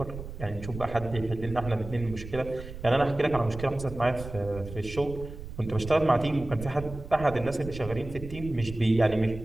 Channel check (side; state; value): right; noise; rumble, 11 dB below the sound